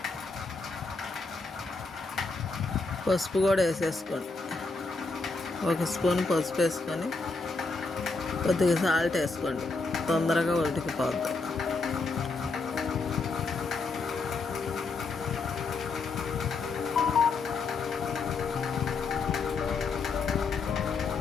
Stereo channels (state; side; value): quieter; right; 4.0 dB